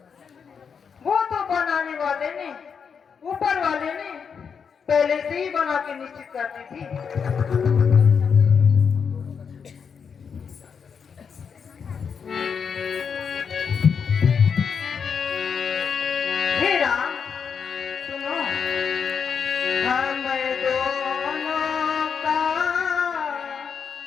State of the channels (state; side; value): quieter; right; 6.5 dB